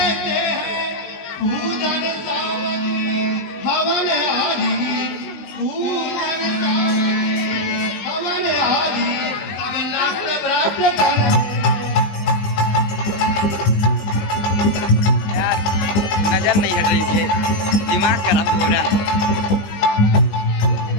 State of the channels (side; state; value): right; late; 20 ms